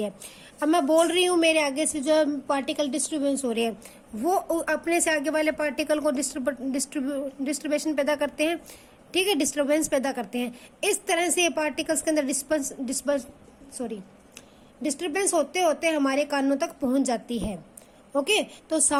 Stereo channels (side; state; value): both; identical; correlation 1.00